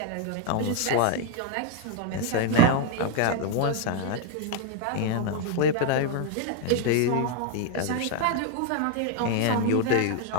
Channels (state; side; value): different; both; correlation 0.00